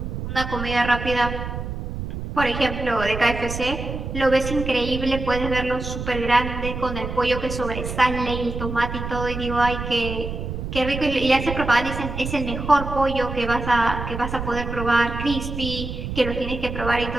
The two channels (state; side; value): noise; right; rumble, 6 dB below the sound